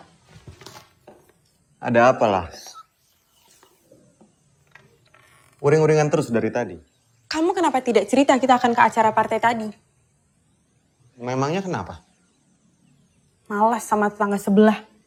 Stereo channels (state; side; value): identical; both; correlation 1.00